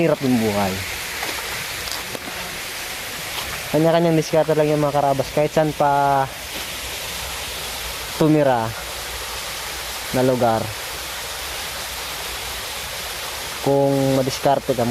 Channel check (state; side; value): identical; both; correlation 1.00